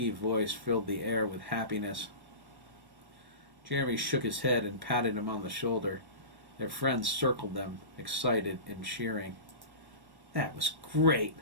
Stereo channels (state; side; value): late; left; 1.1 ms